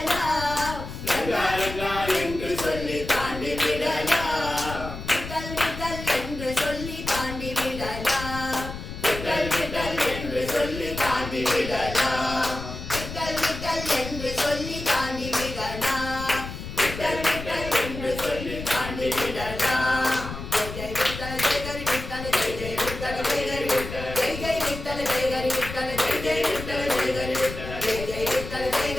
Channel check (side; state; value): left; noise; rumble, 9 dB below the sound